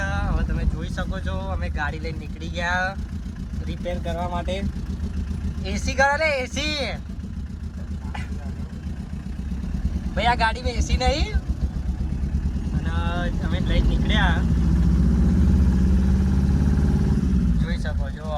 હવે તમે જોઈ શકો છો અમે ગાડી લઈને નીકળી ગયા રિપેર કરવા માટે. એસી કરો ને એસી. ભાઈ આ ગાડીમાં એસી નહીં. અને અમે લઈને નીકળ્યા, જોઈ શકો છો.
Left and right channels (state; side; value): identical; both; correlation 1.00